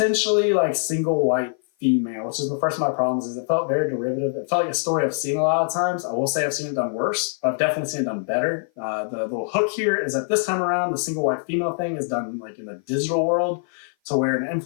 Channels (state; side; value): silent; right; 56 dB below the other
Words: like single white female, which is the first of my problems. Is it felt very derivative. It felt like a story I've seen a lot of times. I will say I've seen it done worse, but I've definitely seen it done better. The little hook here is that this time around, the single white female thing is done like in the digital world, to where an